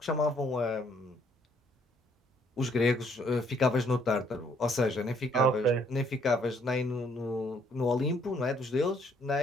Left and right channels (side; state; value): both; normal; correlation 0.66